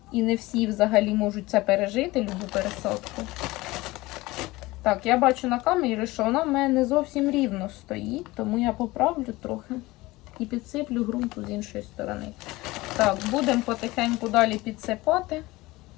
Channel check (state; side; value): quieter; right; 20.2 dB